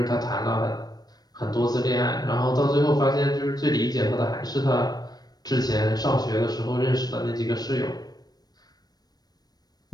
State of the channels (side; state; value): right; late; 0.19 ms